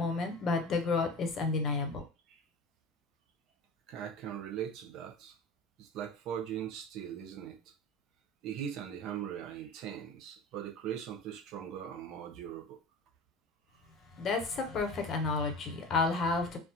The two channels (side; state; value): both; normal; correlation 0.33